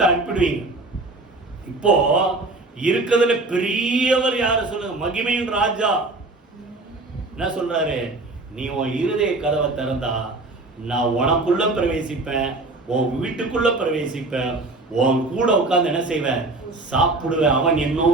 அனுப்பிடுவீங்க. இப்போ இருக்கிறதுல பெரியவர் யாரு சொல்லுங்க, மகிமையின் ராஜா என்ன சொல்றாரு, நீ உன் இருதய கதவை திறந்தா நான் உனக்குள்ள பிரவேசிப்பேன், உன் வீட்டுக்குள்ள பிரவேசிப்பேன், உன் கூட உட்கார்ந்து என்ன செய்வேன், சாப்பிடுவேன். அவன்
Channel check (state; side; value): quieter; left; 3.1 dB